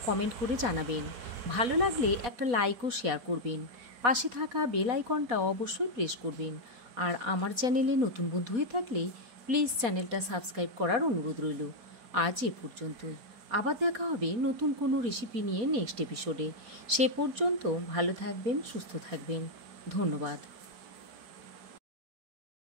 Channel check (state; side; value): late; left; 4.2 ms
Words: কমেন্ট করে জানাবেন। ভালো লাগলে একটা লাইক ও শেয়ার করবেন। পাশে থাকা বেল আইকনটা অবশ্যই প্রেস করবেন। আর আমার চ্যানেলে নতুন বন্ধু হয়ে থাকলে প্লিজ চ্যানেলটা সাবস্ক্রাইব করার অনুরোধ রইল। আজ এ পর্যন্তই। আবার দেখা হবে নতুন কোনো রেসিপি নিয়ে নেক্সট এপিসোডে। সে পর্যন্ত ভালো থাকবেন, সুস্থ থাকবেন। ধন্যবাদ।